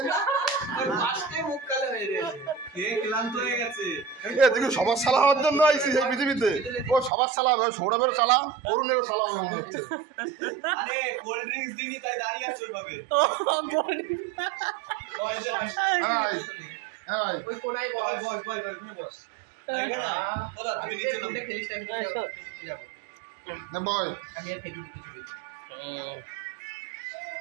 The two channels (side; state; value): left; drops out; at 7.1 s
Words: সবার সালা হওয়ার জন্য আইসি এই পৃথিবীতে। ও সবার সালা হবে, সৌরভেরও সালা, অরুণেরও সালা হবে মনে হচ্ছে। আরে কোল্ড ড্রিঙ্কস দিনি তাই দাঁড়িয়ে আছে ওইভাবে। ওই কোনায় বস ওখানে বস। ওদা তুমি নিচে নামতে খেলিস না, আমি যাব না বয়, আমি আর ফেলি কিছু বলছি।